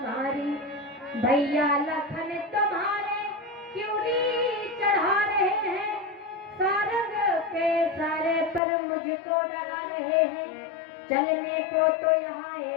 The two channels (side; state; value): right; drops out; at 8.6 s